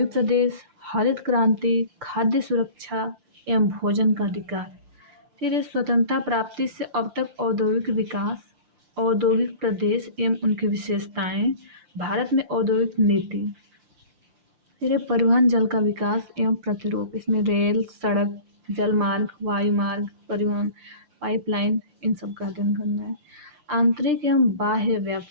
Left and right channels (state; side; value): late; left; 5.7 ms